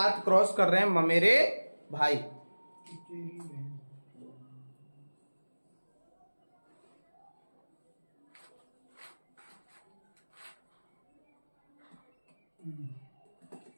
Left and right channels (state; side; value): inverted; both; correlation -1.00